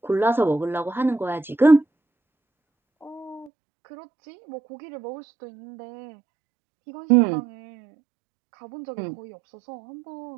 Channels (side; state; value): left; drops out; at 3.5 s